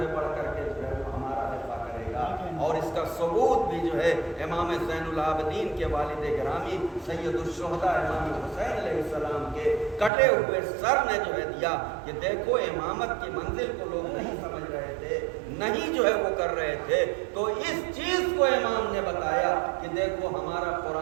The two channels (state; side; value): drops out; left; at 10.1 s